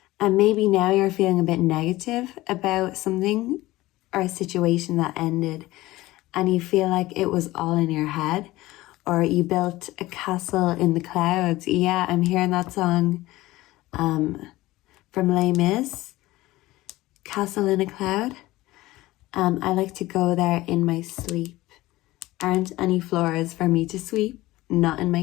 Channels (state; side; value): quieter; right; 18.1 dB